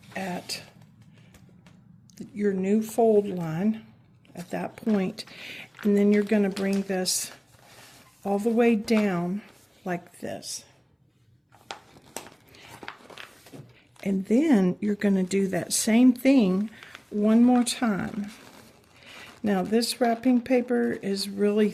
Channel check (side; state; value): both; identical; correlation 1.00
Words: at your new fold line at that point, and then you're going to bring this all the way down like this. And then you're going to do that same thing one more time. Now this wrapping paper is really